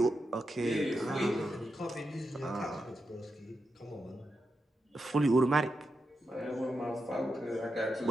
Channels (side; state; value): both; normal; correlation 0.87